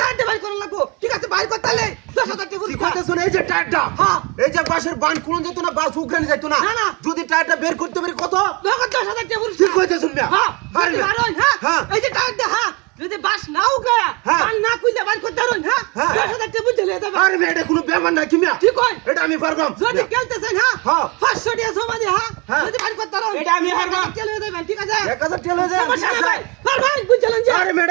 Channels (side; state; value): left; quieter; 28.3 dB